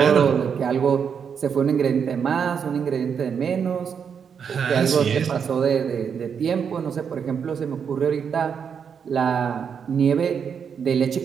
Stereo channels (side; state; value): left; quieter; 7.0 dB